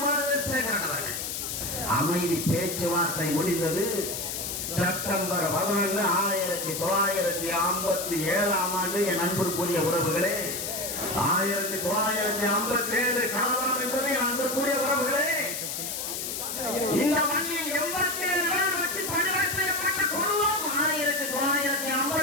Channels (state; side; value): noise; left; hiss, 4 dB below the sound